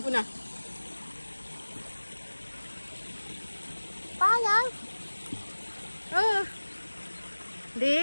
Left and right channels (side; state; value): both; inverted; correlation -1.00